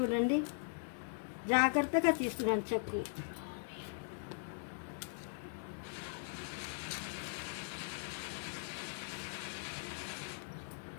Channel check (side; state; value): right; silent; digital silence